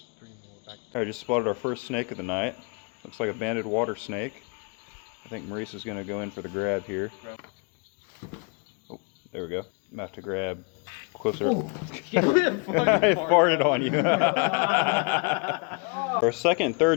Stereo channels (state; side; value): quieter; right; 33.8 dB